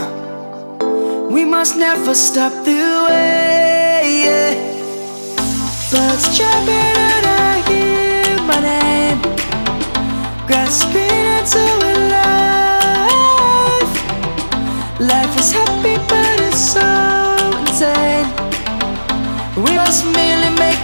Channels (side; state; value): both; inverted; correlation -1.00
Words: We must never stop the way. Birds chirping and I hear my name, grasping into a life. Life is happy but it's so insane. We must merely